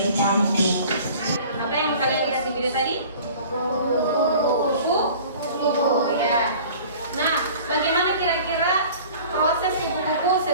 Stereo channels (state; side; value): inverted; both; correlation -0.45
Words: cantik. Apa yang kalian lihat di video tadi? Kupu-kupu. Ya. Nah, bagaimana kira-kira proses kupu-kupu